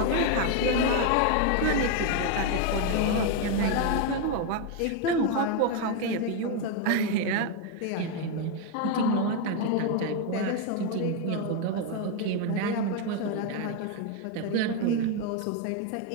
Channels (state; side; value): different; both; correlation 0.01